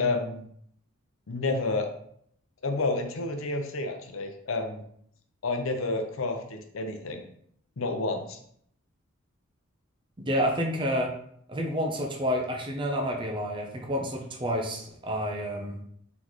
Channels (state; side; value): normal; both; correlation 0.01